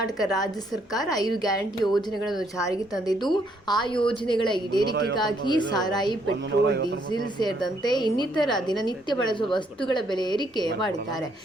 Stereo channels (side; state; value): both; normal; correlation 0.71